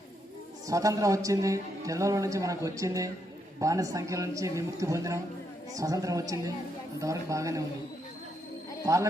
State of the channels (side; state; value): both; normal; correlation 0.78